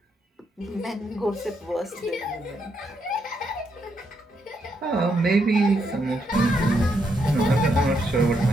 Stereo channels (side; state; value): both; normal; correlation 0.78